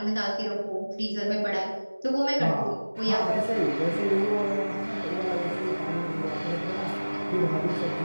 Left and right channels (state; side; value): inverted; both; correlation -1.00